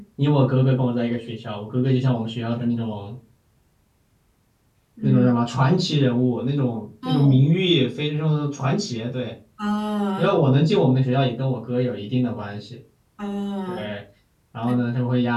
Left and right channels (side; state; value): both; identical; correlation 1.00